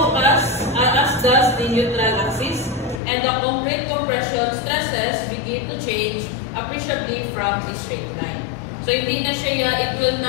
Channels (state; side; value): drops out; right; at 3.0 s